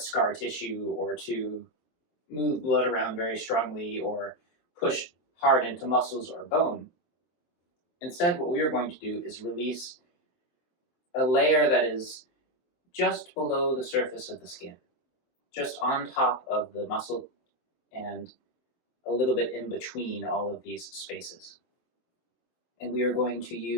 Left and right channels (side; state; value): right; late; 23 ms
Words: tissue or to move blood around very strongly or push hard into muscles or bone, instead what we are going to do is release a layer that is just below the surface of the skin, just on top of the muscle and a little bit in between all of these spaces. And we are going to